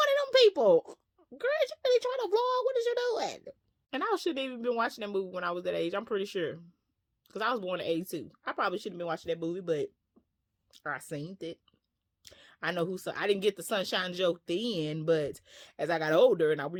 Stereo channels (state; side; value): identical; both; correlation 1.00